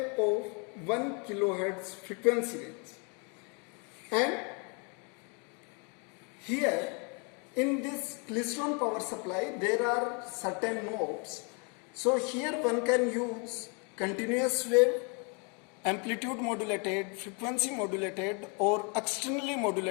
of 1 kilohertz frequency range. And here in this klystron power supply there are certain knobs. So here one can use continuous wave, amplitude modulated, frequency modulated, or externally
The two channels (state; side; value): quieter; right; 35.0 dB